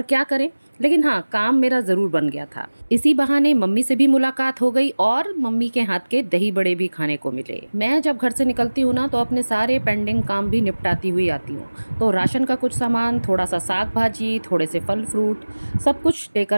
क्या करें, लेकिन हाँ, काम मेरा ज़रूर बन गया था। इसी बहाने मम्मी से भी मुलाकात हो गई और मम्मी के हाथ के दही बड़े भी खाने को मिले। मैं जब घर से निकलती हूँ ना, तो अपने सारे पेंडिंग काम भी निपटाती हुई आती हूँ। तो राशन का कुछ सामान, थोड़ा सा साग भाजी, थोड़े से फल फ्रूट, सब कुछ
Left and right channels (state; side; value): inverted; both; correlation -1.00